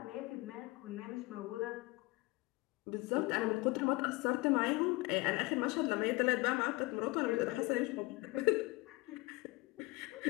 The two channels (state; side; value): quieter; right; 23.7 dB